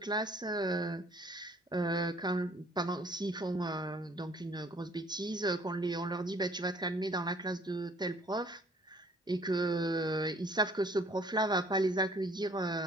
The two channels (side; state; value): both; normal; correlation 0.57